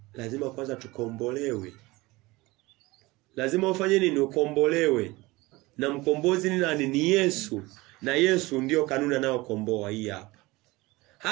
lazima kwanza tukombolewe. Lazima ufanye nini? Ukombolewe. Na mkombozi ni nani? Ni Yesu. Na Yesu ndio kanuni anayokomboa hii hapa.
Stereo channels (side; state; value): left; quieter; 21.5 dB